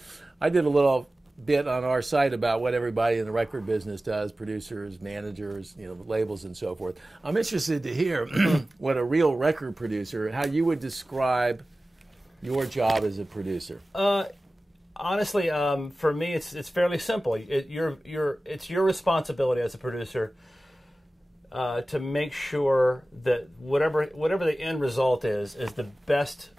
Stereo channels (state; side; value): normal; both; correlation 0.96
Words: I did a little bit on our site about what everybody in the record business does, producers, managers, you know, labels and so forth. I'm interested to hear what a real record producer, how you would describe your job as a producer. Honestly, for me, it's fairly simple. It's your responsibility as a producer to make sure that whatever the end result is the best